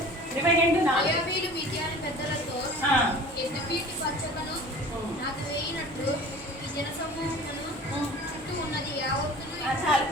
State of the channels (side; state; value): both; normal; correlation 0.42